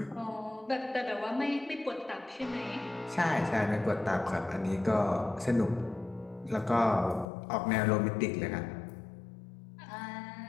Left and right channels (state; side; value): drops out; right; at 7.2 s